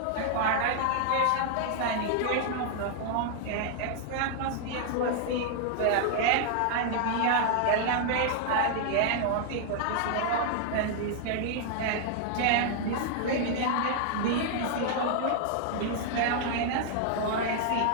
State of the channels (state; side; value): different; both; correlation 0.00